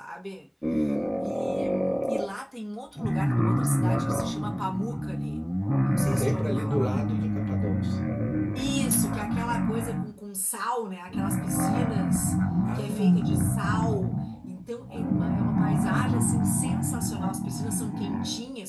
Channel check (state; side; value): identical; both; correlation 1.00